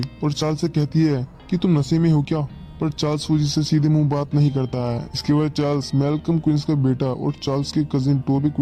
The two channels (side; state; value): both; identical; correlation 1.00